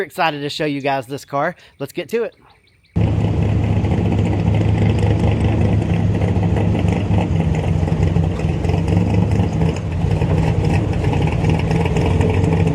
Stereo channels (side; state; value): both; identical; correlation 1.00